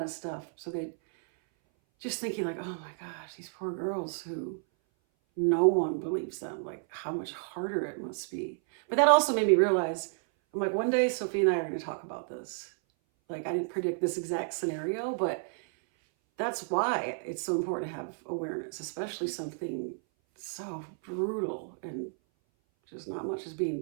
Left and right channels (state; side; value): silent; left; 57 dB below the other